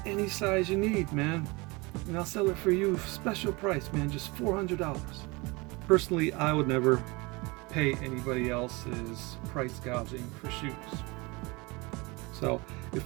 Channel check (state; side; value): quieter; left; 25.5 dB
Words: any size you need, man. And I'll sell it for you special price, man, just $400. Personally, I would never pay anybody else's price gouging for shoes. So